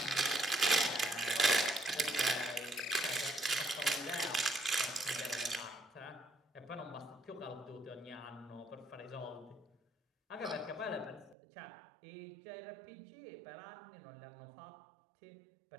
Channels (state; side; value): drops out; left; at 11.4 s